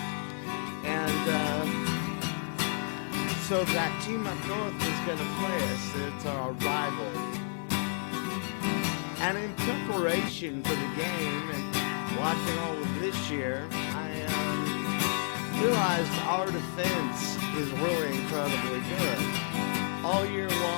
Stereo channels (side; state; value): right; silent; digital silence